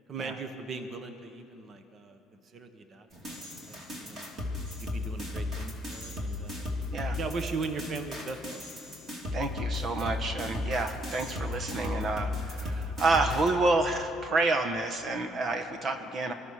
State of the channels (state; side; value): normal; both; correlation 0.70